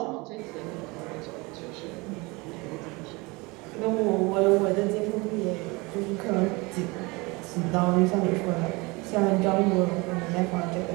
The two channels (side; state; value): left; quieter; 25.3 dB